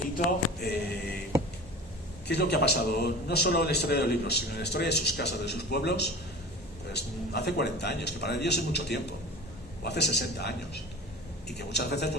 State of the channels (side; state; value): both; normal; correlation 0.37